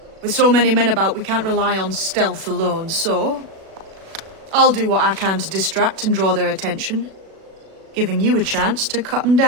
With so many men about, we can't rely on stealth alone, so... I'll do what I can to distract and draw their attention, giving you a chance to cut them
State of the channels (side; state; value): left; late; 37 ms